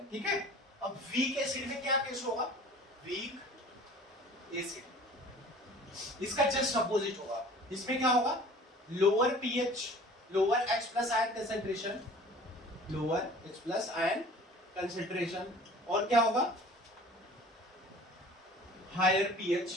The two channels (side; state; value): both; normal; correlation 0.47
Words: ठीक है। अब वीक एसिड में क्या केस होगा, वीक एसिड, इसका जस्ट अपोजिट होगा, इसमें क्या होगा, lower pH, lower H+ ion concentration, lower H+ ion concentration और क्या होगा, higher pH